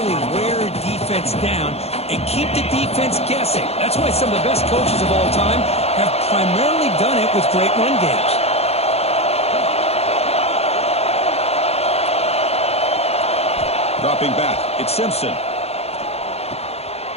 wear a defense down and keep the defense guessing. That's why some of the best coaches of all time have primarily done it with great run games. Dropping back. It's Simpson.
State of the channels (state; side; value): late; right; 0.30 ms